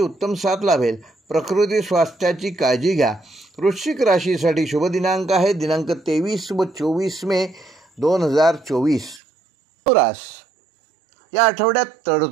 उत्तम साथ लाभेल। प्रकृती स्वास्थ्याची काळजी घ्या। वृश्चिक राशीसाठी शुभ दिनांक आहे दिनांक 23 व 24 मे 2024। या आठवड्यात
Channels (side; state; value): left; drops out; at 9.2 s